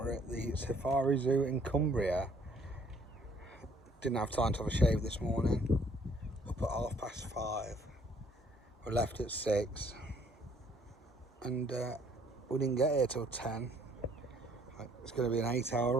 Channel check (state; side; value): normal; both; correlation 0.62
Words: at the Safari Zoo in Cumbria. Didn't have time to have a shave this morning. Up at 5:30. We left at 6 and we didn't get here till 10. It's going to be an